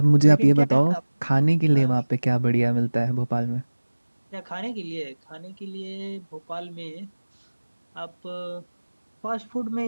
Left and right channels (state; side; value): inverted; both; correlation -1.00